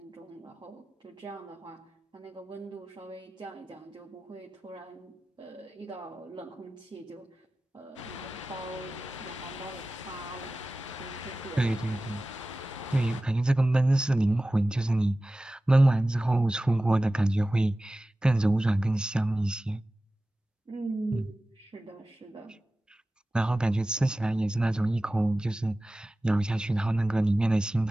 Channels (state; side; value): normal; both; correlation 0.96